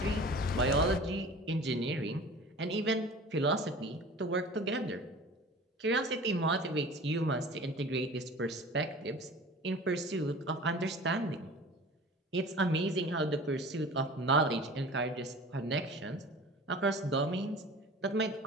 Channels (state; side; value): normal; both; correlation 0.41